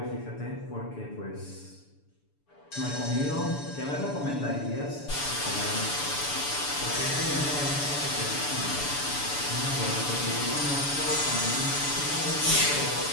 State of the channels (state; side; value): late; right; 6.9 ms